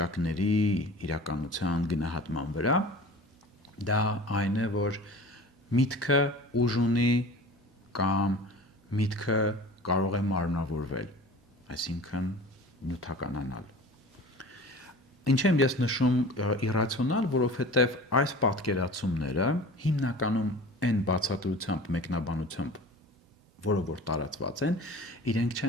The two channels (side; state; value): both; normal; correlation 0.40